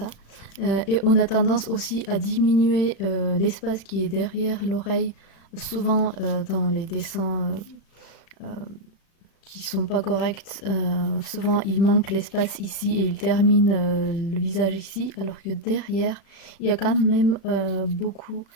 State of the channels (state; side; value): late; right; 36 ms